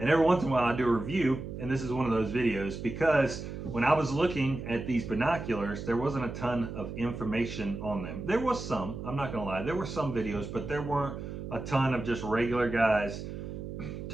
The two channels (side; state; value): right; noise; hum, 8 dB below the sound